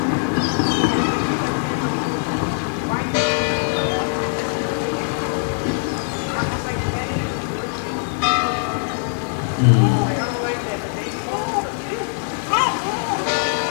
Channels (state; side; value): silent; right; 65 dB below the other